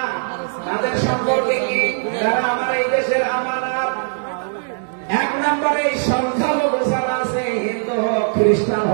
তাদের সম্পর্কে কি? তারা আমার এই দেশের আমানত। এক নম্বরে এই সংখ্যালঘু যারা আছে, হিন্দু হোক, খ্রিস্টান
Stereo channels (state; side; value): silent; left; digital silence